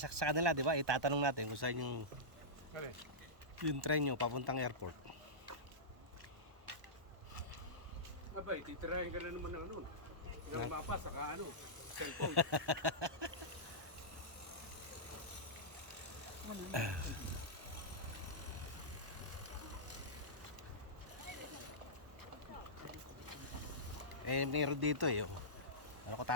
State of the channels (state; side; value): late; left; 1.1 ms